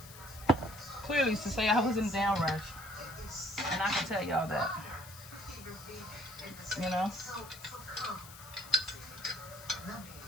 Clearly to say I was in a damn rush. And I can tell y'all that. You know?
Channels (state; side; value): noise; left; hiss, 16 dB below the sound